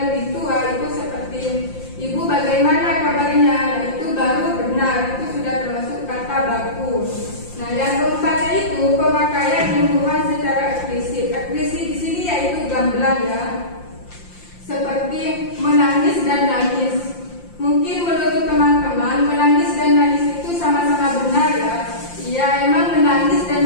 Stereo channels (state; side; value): late; right; 5.7 ms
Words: lebih tua itu seperti ibu bagaimana kabarnya. Nah, itu baru benar, itu sudah termasuk kata baku. Nah, yang keempatnya itu pemakaian imbuhan secara eksplisit. Eksplisit di sini yaitu gamblang ya. Seperti menangis dan nangis. Mungkin menurut teman-teman menangis dan nangis itu sama-sama benar ya. Ya, emang menangis dan